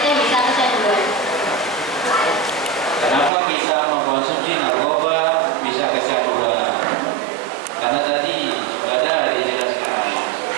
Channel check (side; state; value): left; drops out; at 3.3 s